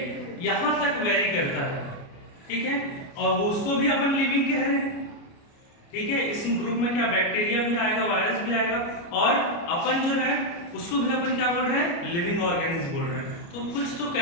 यहाँ तक वेरी करता है। ठीक है, और वो उसको भी अपन लिविंग कह रहे हैं। ठीक है, इस ग्रुप में क्या बैक्टीरिया भी आएगा, वायरस भी आएगा, और अपन जो है उसको भी अपन क्या बोल रहे हैं? लिविंग ऑर्गेनिज्म बोल रहे हैं। तो कुछ तो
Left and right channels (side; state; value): right; late; 29 ms